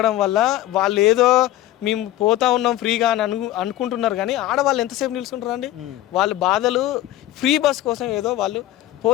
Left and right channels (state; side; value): quieter; right; 14.3 dB